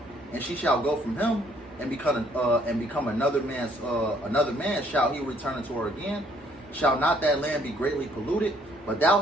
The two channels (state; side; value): normal; both; correlation 0.64